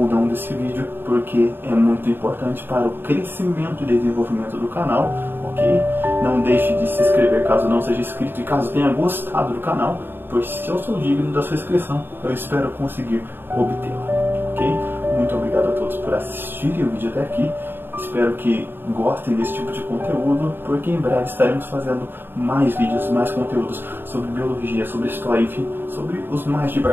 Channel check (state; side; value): late; left; 0.099 ms